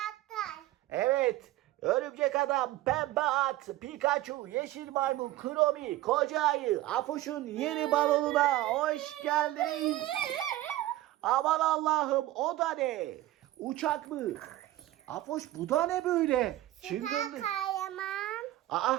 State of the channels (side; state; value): left; quieter; 15.7 dB